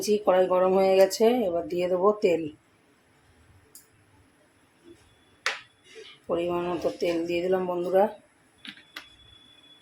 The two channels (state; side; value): identical; both; correlation 1.00